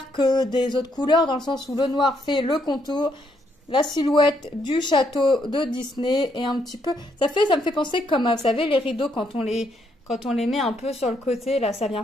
que des autres couleurs, dans le sens où le noir fait le contour, la silhouette du château de Disney, et un petit peu, ça me fait penser comme, vous savez, les rideaux quand on les met un peu sur le côté, là, ça vient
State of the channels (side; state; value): both; normal; correlation 0.74